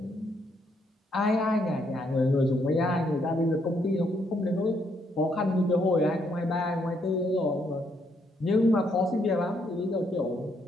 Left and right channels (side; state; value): both; normal; correlation 0.73